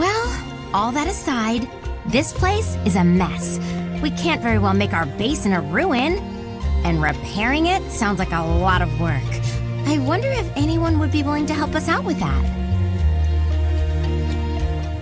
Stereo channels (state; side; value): identical; both; correlation 1.00